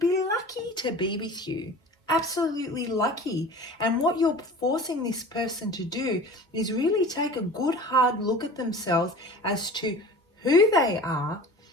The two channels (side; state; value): both; normal; correlation 0.40